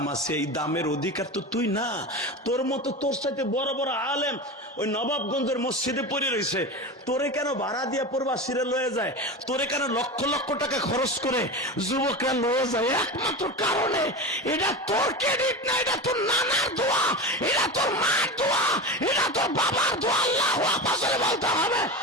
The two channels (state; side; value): normal; both; correlation 0.25